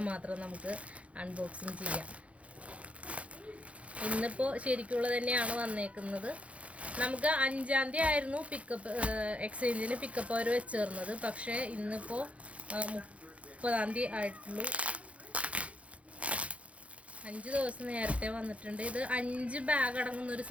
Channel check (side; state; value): left; late; 0.064 ms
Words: മാത്രം നമുക്ക് അൺബോക്സിങ് ചെയ്യാം. ഇന്നിപ്പോൾ ശരിക്കുള്ളത് തന്നെയാണ് വന്നേക്കുന്നത്. നമുക്ക് 5-ാം തീയതി ആയിരുന്നു എക്സ്ചേഞ്ചിന് പിക്കപ്പ് അവർ വെച്ചേർന്നത്. പക്ഷേ ഇന്നിപ്പോൾ 30-ാം തീയതി ആയിട്ടുള്ളൂ. 5 ദിവസം നേരത്തെ വന്നിട്ടുണ്ട്. ഇത് 5 ബാഗ് അടങ്ങുന്നൊരു